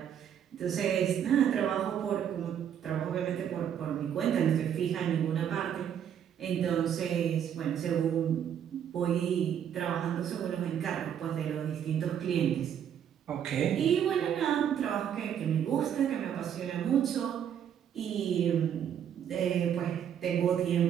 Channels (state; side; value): quieter; left; 9.1 dB